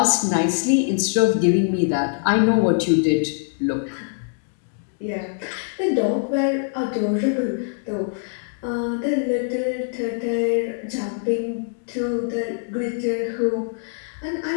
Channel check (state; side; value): silent; right; digital silence